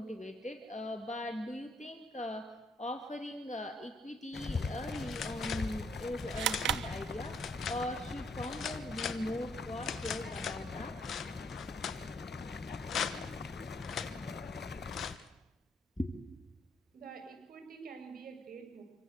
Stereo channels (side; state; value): both; normal; correlation 0.68